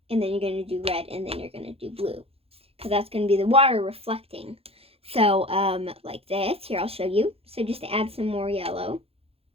And then you're going to do red, and then you're going to do blue. Because that's going to be the water reflecting. So like this. Here, I'll show you. So just add some more yellow.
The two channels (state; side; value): late; left; 0.28 ms